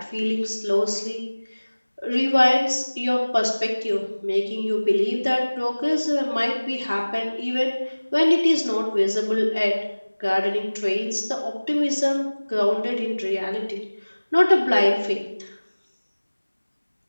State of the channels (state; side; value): inverted; both; correlation -1.00